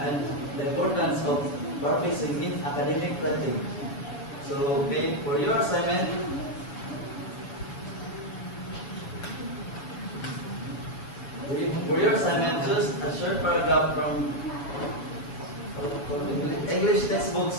the importance of paraphrasing in academic writing. So, okay, for your assignment, choose a short paragraph from English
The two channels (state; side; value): late; right; 7.1 ms